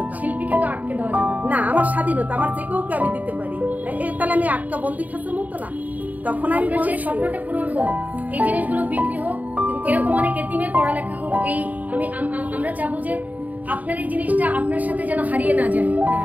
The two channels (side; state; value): left; late; 0.076 ms